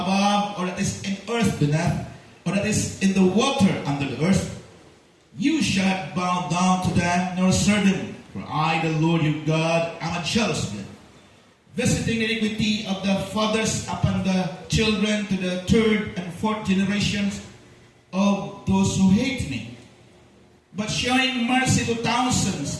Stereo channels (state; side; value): identical; both; correlation 1.00